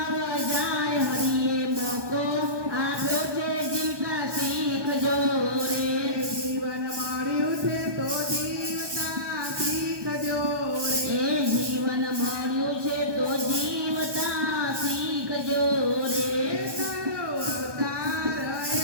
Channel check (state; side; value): late; left; 1.2 ms